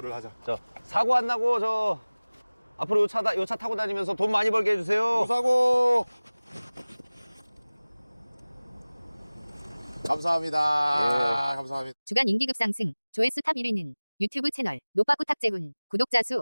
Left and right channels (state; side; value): inverted; both; correlation -1.00